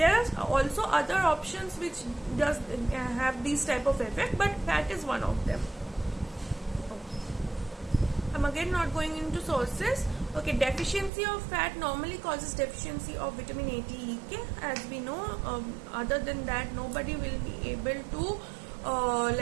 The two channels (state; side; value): drops out; left; at 11.1 s